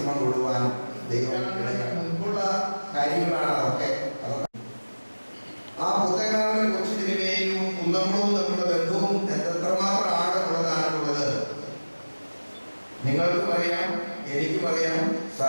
കൊള്ളുവാൻ ദൈവം മുൻപുള്ള കാര്യങ്ങളാണ് അതൊക്കെ. ആ പുത്തങ്കാവിലെ കൊച്ചു തിരുമേനിയും കുന്നംകുളവും തമ്മിലുള്ള ബന്ധവും എത്രമാത്രം ആഴമുള്ളതാണുള്ളത് നിങ്ങൾക്കും അറിയാം, എനിക്കും അറിയാം,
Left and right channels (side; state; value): both; inverted; correlation -1.00